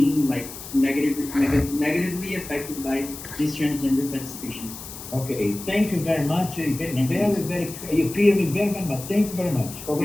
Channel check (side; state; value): left; noise; hiss, 12 dB below the sound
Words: like negatively affected by these transgender participations. Okay. Thank you very much. Very, Thank you. very, you clear me very, very much. Thank you very much. Thank you.